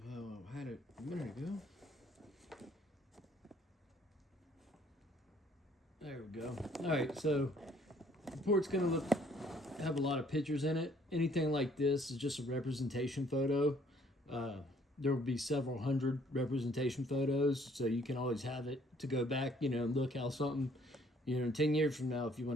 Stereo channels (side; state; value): both; normal; correlation 0.61